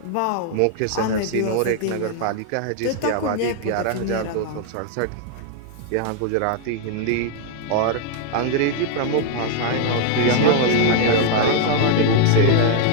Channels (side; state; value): both; different; correlation 0.00